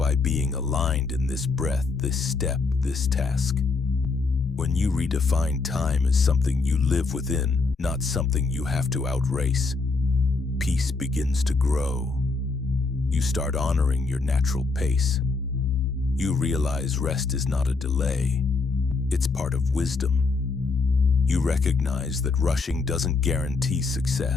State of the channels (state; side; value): quieter; right; 4.0 dB